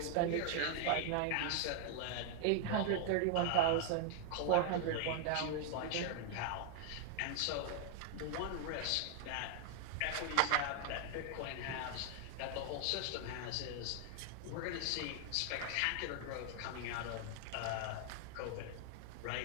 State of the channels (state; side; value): different; both; correlation -0.01